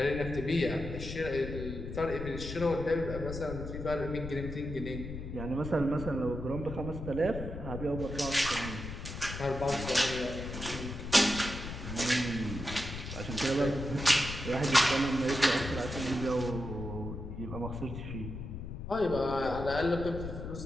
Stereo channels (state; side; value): noise; left; rumble, 8 dB below the sound